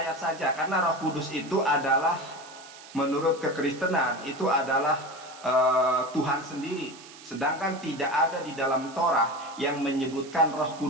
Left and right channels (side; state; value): right; noise; hiss, 18 dB below the sound